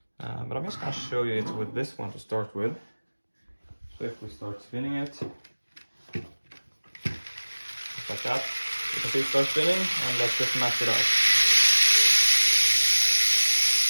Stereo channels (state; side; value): inverted; both; correlation -1.00